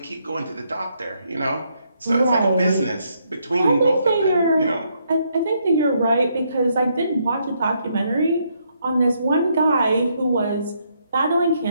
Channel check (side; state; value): both; inverted; correlation -0.74